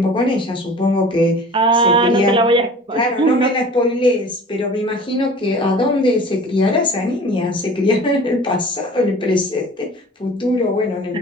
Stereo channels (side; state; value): both; normal; correlation 0.44